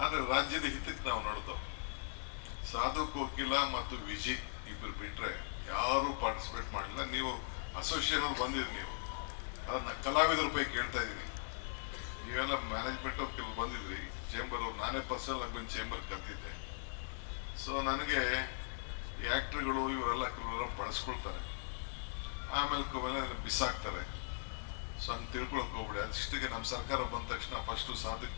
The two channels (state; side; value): silent; right; digital silence